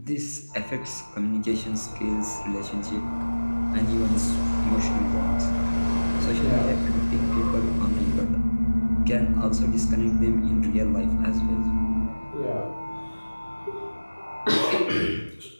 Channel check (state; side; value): inverted; both; correlation -1.00